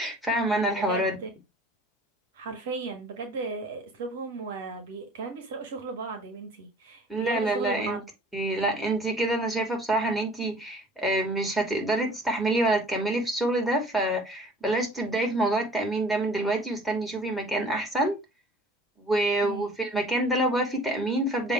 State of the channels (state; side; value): normal; both; correlation 0.50